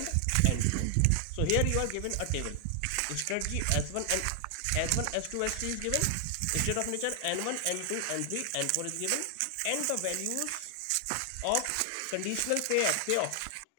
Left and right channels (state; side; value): different; both; correlation 0.00